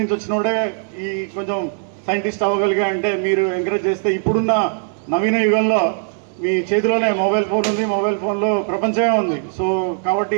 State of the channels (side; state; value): left; silent; 66 dB below the other